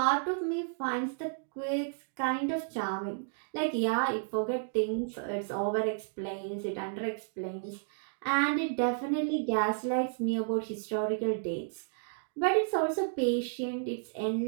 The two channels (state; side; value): silent; left; digital silence